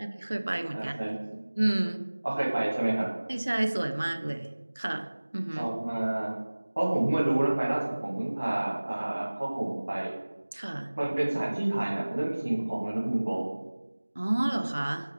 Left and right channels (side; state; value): both; inverted; correlation -1.00